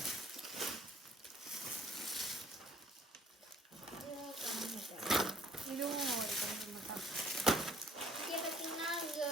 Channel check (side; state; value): both; normal; correlation 0.61